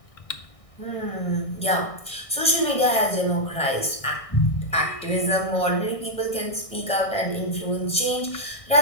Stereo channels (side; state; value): right; late; 1.6 ms